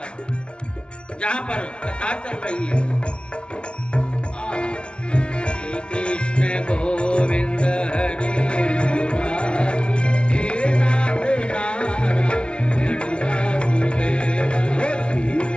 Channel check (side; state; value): right; late; 0.058 ms